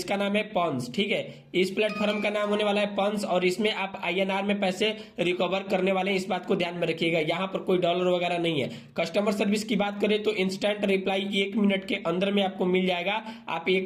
नाम है पॉन्स। ठीक है, इस प्लेटफॉर्म का नाम होने वाला है पॉन्स, और इसमें आप INR में पैसे रिकवर करने वाले हैं। इस बात को ध्यान में रखिएगा, यहाँ पर कोई डॉलर वगैरह नहीं है। कस्टमर सर्विस की बात करें तो इंस्टेंट रिप्लाई 1 मिनट के अंदर में आपको मिल जाएगा। आप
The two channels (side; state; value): both; identical; correlation 1.00